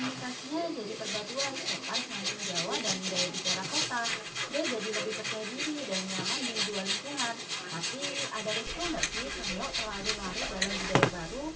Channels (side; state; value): both; identical; correlation 1.00